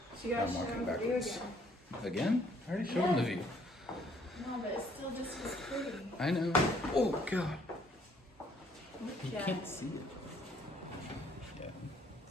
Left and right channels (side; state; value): both; normal; correlation 0.64